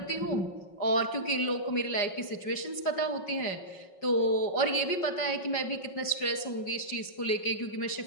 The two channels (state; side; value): late; right; 5.4 ms